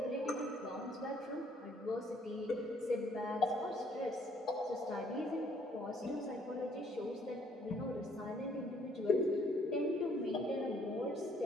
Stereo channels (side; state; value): both; normal; correlation 0.64